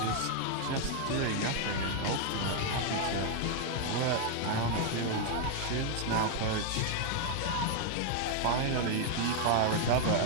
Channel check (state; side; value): different; both; correlation 0.00